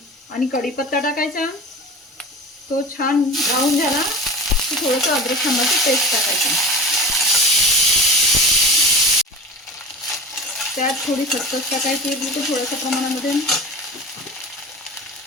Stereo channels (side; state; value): both; normal; correlation 0.33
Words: आणि कढीपत्ता टाकायचा। तो छान ब्राऊन झाला की थोडंसं अद्रक लसणाची पेस्ट टाकायची। त्यात थोडी खसखस टाकायची, बिलकुल थोड्याशा प्रमाणामध्ये।